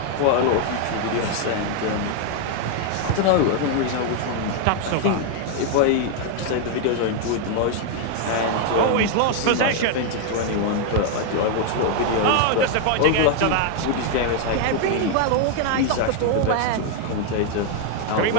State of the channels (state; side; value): different; both; correlation 0.00